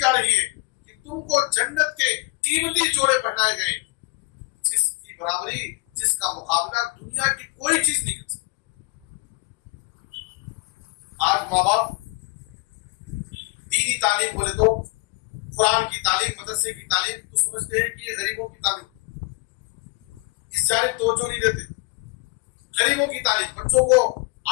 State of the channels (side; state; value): right; quieter; 27.9 dB